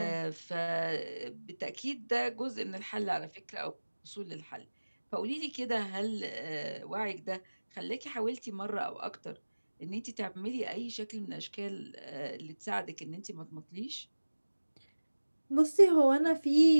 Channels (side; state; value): both; inverted; correlation -1.00